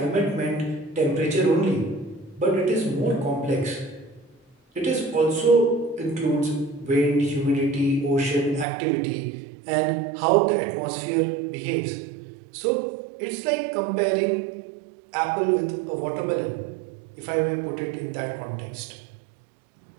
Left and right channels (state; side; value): drops out; left; at 8.7 s